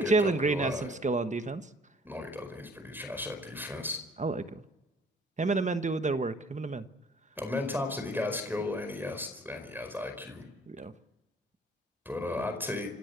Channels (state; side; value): normal; both; correlation 0.56